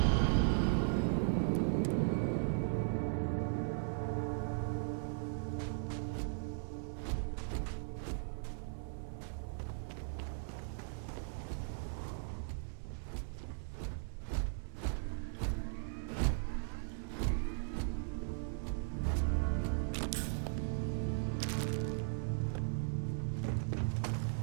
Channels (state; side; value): silent; left; 52 dB below the other